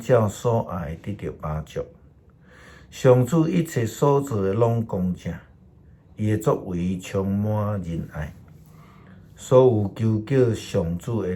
所爱得到饱足。上主一切所做的拢公正。伊的作为充满仁爱，所有求叫上主的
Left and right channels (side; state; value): both; identical; correlation 1.00